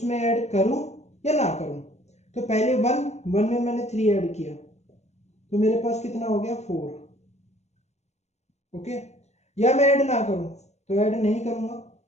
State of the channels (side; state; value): right; late; 0.32 ms